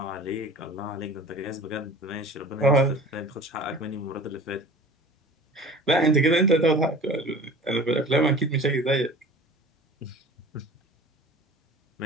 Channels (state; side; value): normal; both; correlation 0.41